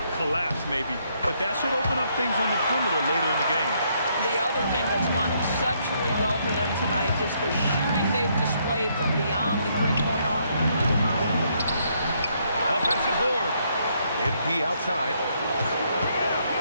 collapse maybe, but that should open up things on the perimeter later in the game. The other thing that's gone exceptionally well for them tonight is the shooting they've displayed from beyond the three-point arc. Offensive board. MP outside.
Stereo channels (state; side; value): inverted; both; correlation -0.72